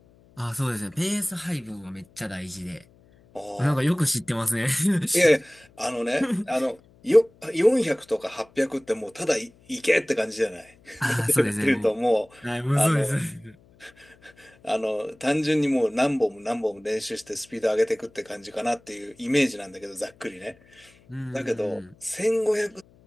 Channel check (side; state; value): left; noise; hum, 29 dB below the sound